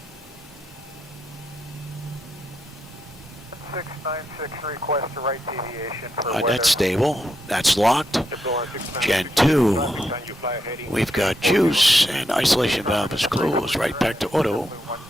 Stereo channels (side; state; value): both; normal; correlation 0.82